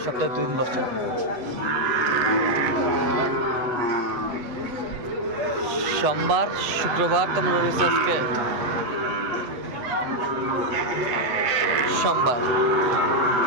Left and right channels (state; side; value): late; left; 8.0 ms